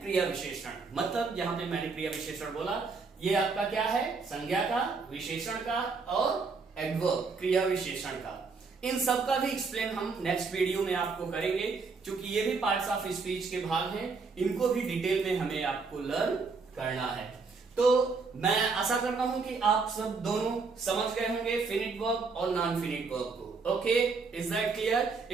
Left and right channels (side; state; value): left; quieter; 4.5 dB